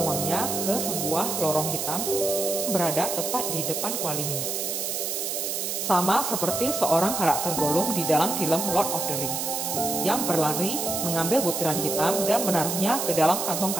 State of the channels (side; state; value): right; noise; hiss, 2 dB below the sound